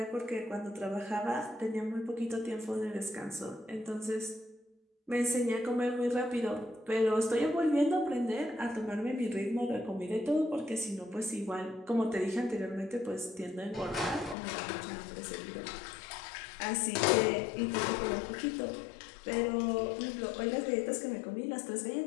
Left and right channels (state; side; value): drops out; right; at 14.4 s